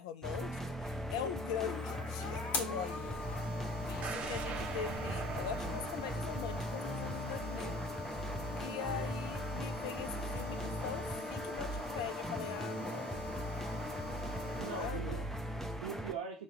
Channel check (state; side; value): normal; both; correlation 0.50